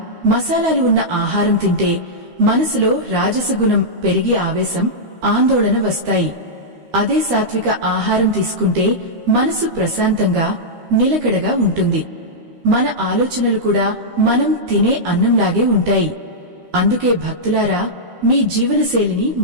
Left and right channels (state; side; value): late; left; 13 ms